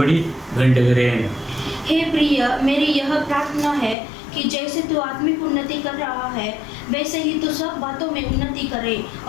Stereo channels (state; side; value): drops out; right; at 4.0 s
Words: வேண்டுகிறேன். हे प्रिय, मेरी यह प्रार्थना है कि जैसे तू आत्मिक उन्नति कर रहा है वैसे ही तू सब बातों में उन्नति करे